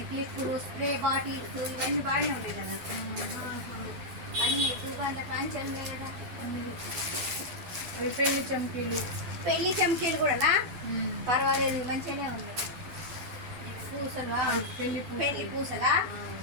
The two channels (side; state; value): left; late; 11 ms